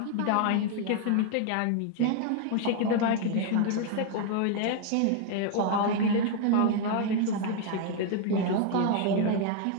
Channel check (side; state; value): both; different; correlation 0.00